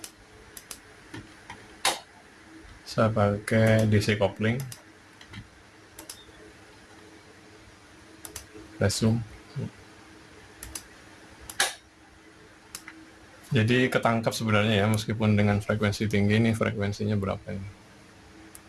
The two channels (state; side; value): identical; both; correlation 1.00